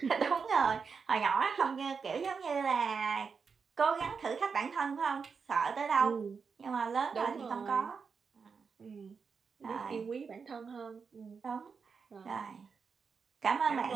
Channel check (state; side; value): quieter; left; 5.6 dB